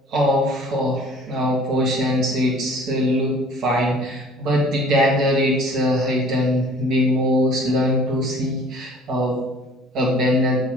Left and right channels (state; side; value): normal; both; correlation 0.51